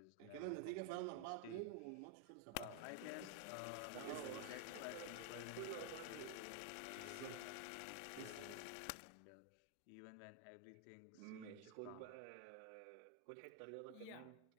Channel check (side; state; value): both; different; correlation 0.00